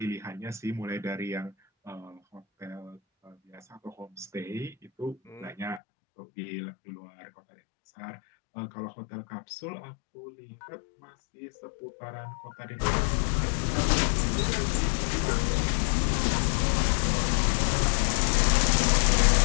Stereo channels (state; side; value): drops out; right; at 5.8 s